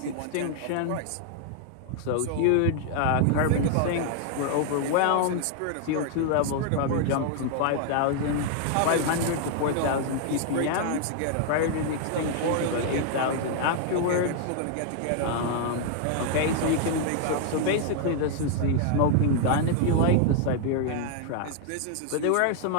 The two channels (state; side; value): different; both; correlation 0.00